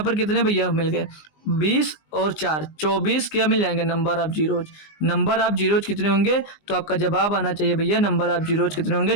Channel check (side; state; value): right; late; 19 ms